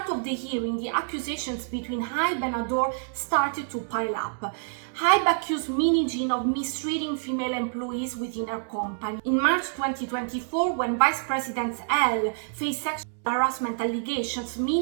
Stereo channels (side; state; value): left; silent; digital silence